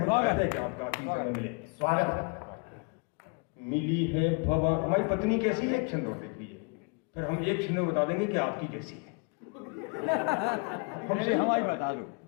कहते हैं कि आपका आखिरी समय मिले। स्वागत। मिली है भगवान, हमारी पत्नी कैसी है, एक छंद और देख लीजिए, फिर हम एक छंद में बता देंगे कि आपकी कैसी है। हमसे हमारी बता दो।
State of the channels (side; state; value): right; quieter; 33.7 dB